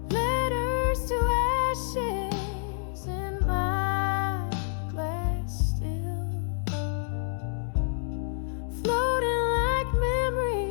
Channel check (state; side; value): silent; right; digital silence